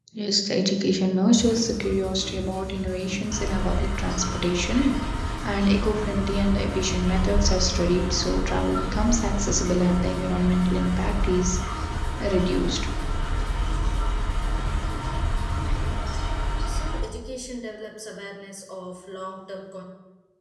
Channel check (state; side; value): identical; both; correlation 1.00